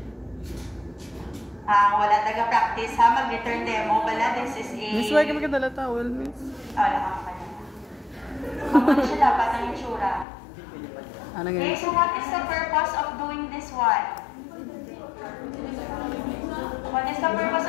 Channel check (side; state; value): right; drops out; at 10.2 s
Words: taga-practice ha, mag-return demo pala. This is a... Miss, why ka magkadala towel, miss? Wala ka pa na. Ano siya dapat ang itsura? Ano Okay, nga? so what is the purpose of doing this one? What is the purpose